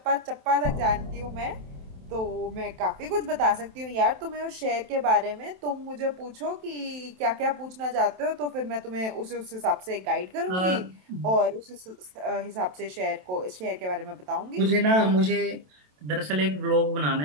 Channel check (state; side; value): late; left; 27 ms